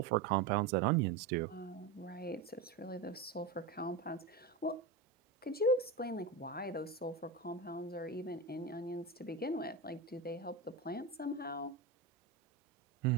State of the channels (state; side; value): quieter; left; 4.1 dB